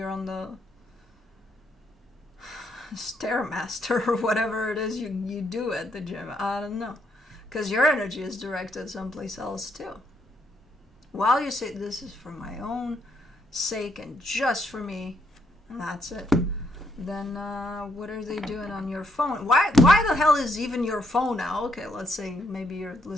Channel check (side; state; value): both; normal; correlation 0.74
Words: on the Stairmaster or whatever it is you do at the gym? I don't know, because your energy is directed someplace else too. While you say this is for my own sake and just for me, and that's it, then what are they doing on your phone? Why the hell is even your phone now? Okay, let's say maybe you're